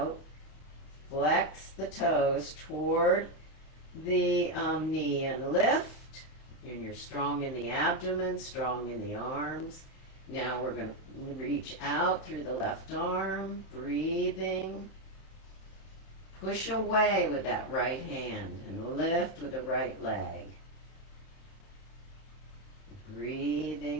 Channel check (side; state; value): right; late; 31 ms